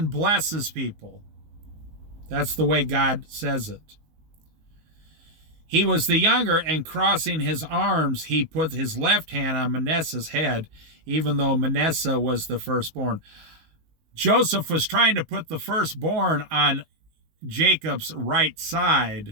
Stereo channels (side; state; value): left; late; 19 ms